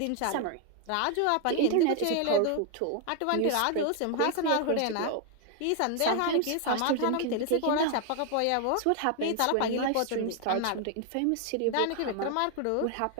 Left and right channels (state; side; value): different; both; correlation 0.00